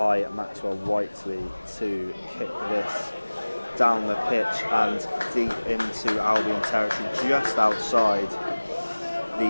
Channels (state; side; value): inverted; both; correlation -1.00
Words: Maxwell Whiteley to kick this down the pitch and deep into Albion territory, just outside